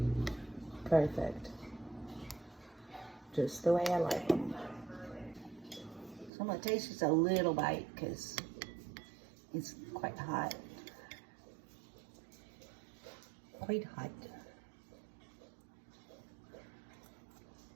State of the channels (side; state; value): left; drops out; at 6.3 s